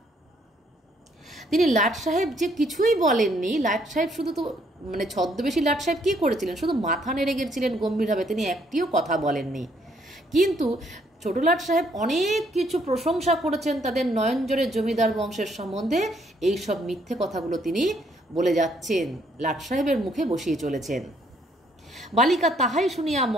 তিনি লাট সাহেব যে কিছুই বলেননি। লাট সাহেব শুধু তো মানে ছদ্মবেশী লাট সাহেব কি করেছিলেন, শুধু মাথা নেড়ে গেছিলেন গম্ভীরভাবে, তিনি একটিও কথা বলেননি। কিন্তু ছোট লাট সাহেব অনেক কিছু প্রশংসা করেছেন তাদের নয়নজোরের জমিদার বংশের সম্বন্ধে। এই সব মিথ্যে কথাগুলো তিনি বলে যাচ্ছেন, লাট সাহেবের মুখে বসিয়ে চলেছেন। বালিকা তাহাই শুনিয়া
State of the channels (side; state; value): both; normal; correlation 0.68